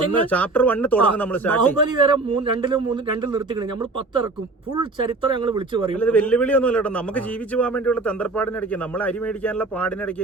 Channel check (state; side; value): quieter; left; 3.4 dB